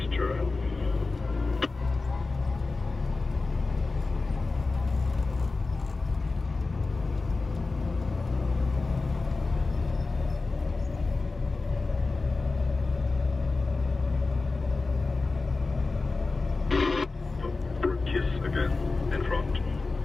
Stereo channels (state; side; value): quieter; right; 3.7 dB